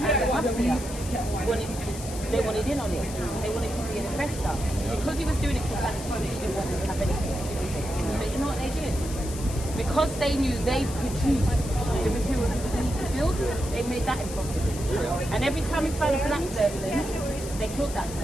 mafia they wanted in on it. They wanted to be an investor. Because he was doing it for that money, he didn't want to have anything to do with it. But you know what they did? Because they knew they produced the material they need to build, they made that impossible. And every time we found a black person, they killed that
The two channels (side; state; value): left; noise; hiss, 12 dB below the sound